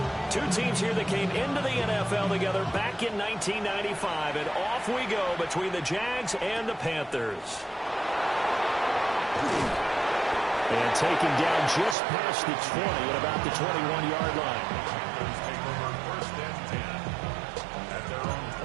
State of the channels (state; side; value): drops out; left; at 12.0 s